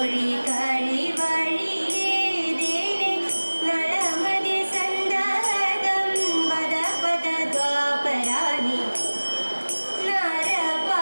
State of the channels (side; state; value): both; inverted; correlation -1.00